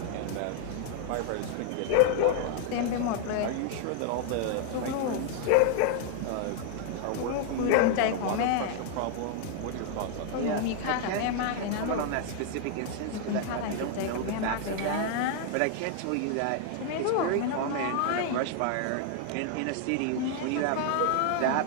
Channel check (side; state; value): both; different; correlation 0.00